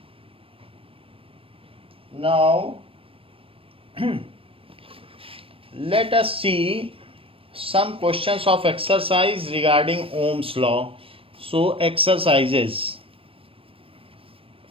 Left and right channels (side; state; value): left; late; 0.27 ms